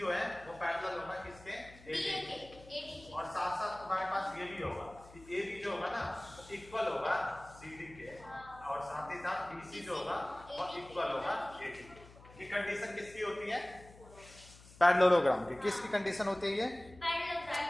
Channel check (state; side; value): noise; left; hum, 21 dB below the sound